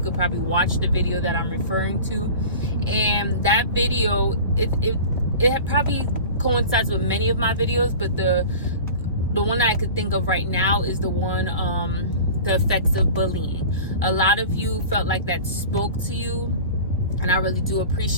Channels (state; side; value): inverted; both; correlation -0.37